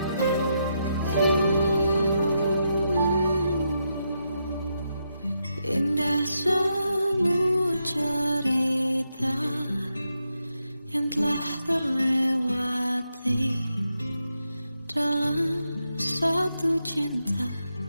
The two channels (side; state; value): both; inverted; correlation -0.83